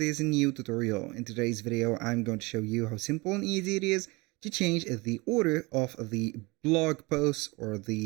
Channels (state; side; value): quieter; left; 24.9 dB